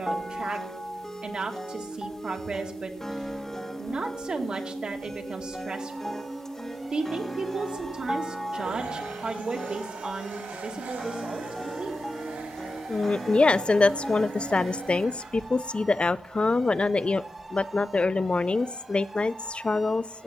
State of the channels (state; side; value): normal; both; correlation 0.91